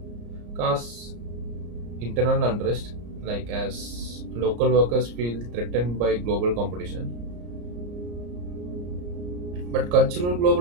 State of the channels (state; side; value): late; left; 34 ms